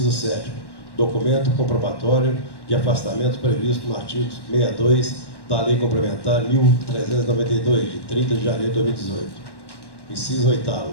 7º. Documento comprobatório de afastamento previsto no artigo 62 da Lei Complementar 1392, de 30 de janeiro de 2018. Inciso 8º.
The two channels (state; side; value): late; right; 1.1 ms